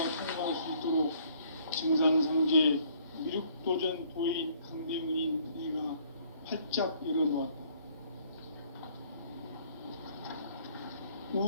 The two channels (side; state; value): both; inverted; correlation -0.61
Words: 통과할 수 있도록 증산상제 미륵도전 도인 강대문인 내가 활짝 열어놓았다.